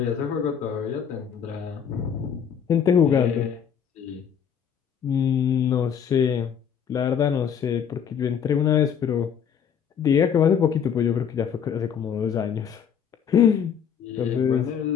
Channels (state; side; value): quieter; right; 7.9 dB